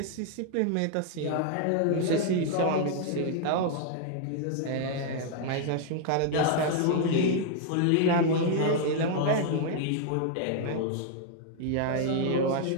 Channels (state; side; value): different; both; correlation 0.00